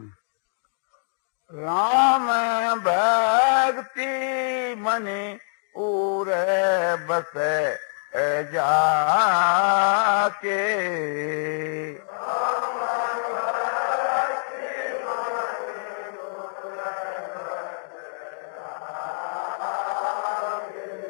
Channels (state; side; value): silent; right; digital silence